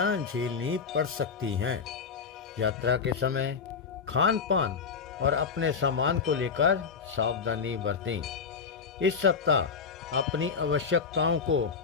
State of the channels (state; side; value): quieter; right; 5.7 dB